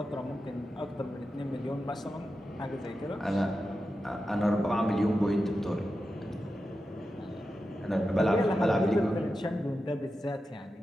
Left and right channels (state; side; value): normal; both; correlation 0.91